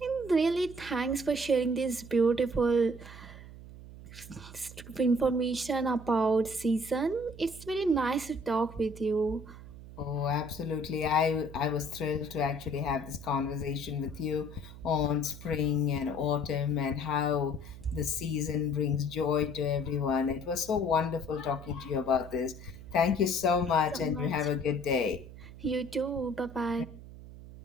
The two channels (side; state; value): right; noise; hum, 15 dB below the sound